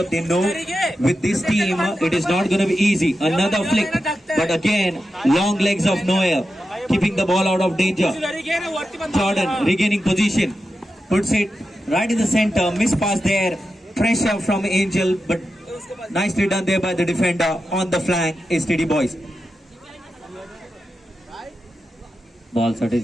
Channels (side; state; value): both; normal; correlation 0.90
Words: They know with this team it is not going to be easy. Another flick, but again long legs of Noel keeping the ball out of danger. Jordan regaining position, puts it right in the center. Miss pass there, pressure from Angel, but nicely done there by the defender. On the flank is TD boys. Ball साठी